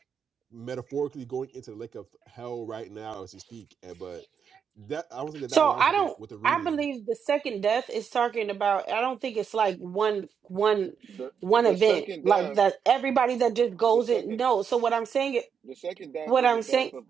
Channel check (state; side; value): quieter; left; 7.1 dB